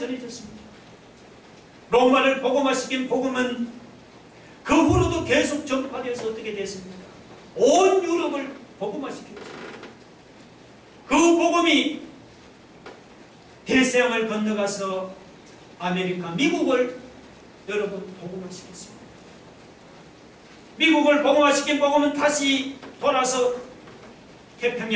로마를 복음화시킨 복음은 그 후로도 계속 전파되어서 어떻게 됐습니까? 온 유럽을 복음화시켰습니다. 그 복음이 대서양을 건너가서 아메리카, 미국을 여러분 복음화시켰습니다. 미국을 복음화시킨 복음은 다시 돌아서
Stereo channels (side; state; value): both; identical; correlation 1.00